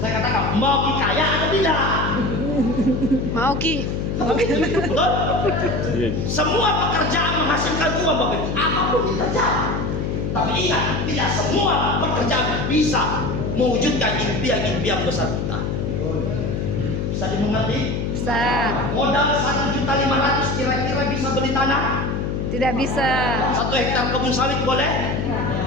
katakan mau kaya atau tidak? Mau Ki. Betul? Semua pekerjaan menghasilkan uang Bapak Ibu, apapun pekerjaan. Tapi ingat, tidak semua pekerjaan bisa mewujudkan impian-impian besar kita. Bisa dimengerti? Bisa. Modal 1.500.000 kira-kira bisa beli tanah? Tidak bisa. 1 hektar kebun sawit boleh?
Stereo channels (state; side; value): noise; left; hum, 1 dB below the sound